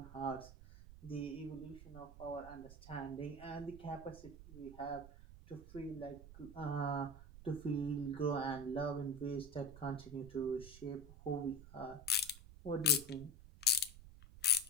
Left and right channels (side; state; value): right; noise; rumble, 16 dB below the sound